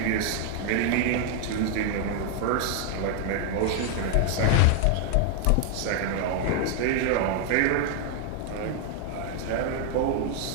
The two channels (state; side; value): different; both; correlation 0.00